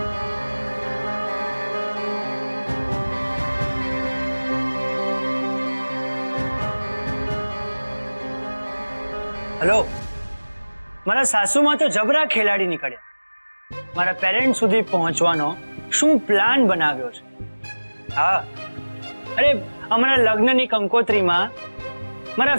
હેલો, મારા સાસુમાં તો જબરા ખેલાડી નીકળ્યા. મારા પેરેન્ટ સુધી પહોંચવાનો શું પ્લાન બનાવ્યો છે? હા, અરે અમારા લગ્નની કંકોત્રીમાં મારા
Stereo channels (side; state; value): both; inverted; correlation -1.00